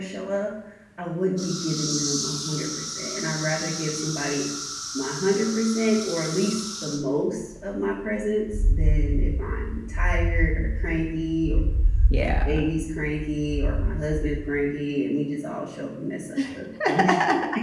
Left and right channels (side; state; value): both; identical; correlation 1.00